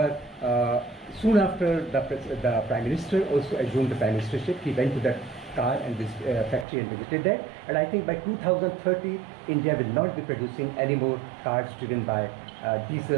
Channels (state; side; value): drops out; left; at 6.7 s